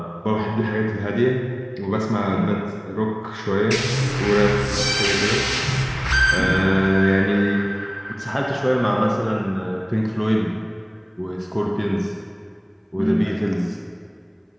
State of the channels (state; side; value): identical; both; correlation 1.00